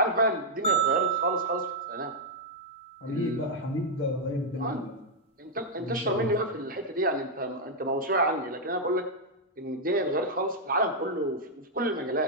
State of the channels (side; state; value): both; normal; correlation -0.04